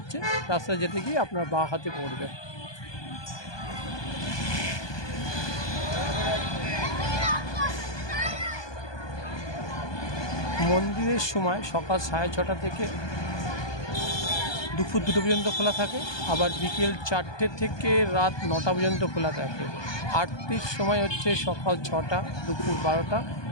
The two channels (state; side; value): late; right; 1.2 ms